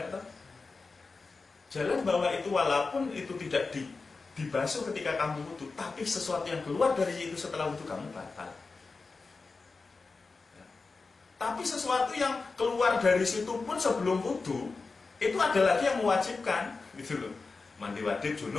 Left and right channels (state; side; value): quieter; right; 4.1 dB